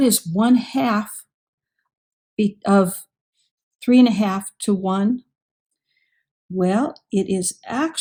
is 1/2 of 3.5 to 1? Well, it is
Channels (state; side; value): identical; both; correlation 1.00